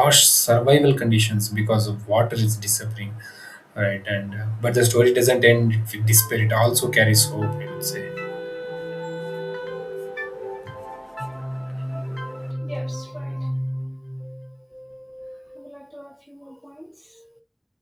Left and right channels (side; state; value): both; identical; correlation 1.00